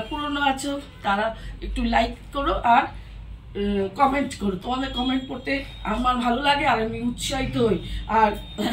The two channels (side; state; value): both; identical; correlation 1.00